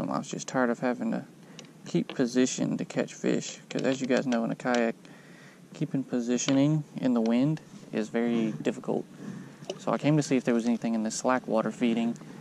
I was just tired of having to keep position to catch fish, because as you guys know, in a kayak, keeping positioning in the wind is very difficult. So I came to see if there was anything in the slack water feeding,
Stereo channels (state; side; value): identical; both; correlation 1.00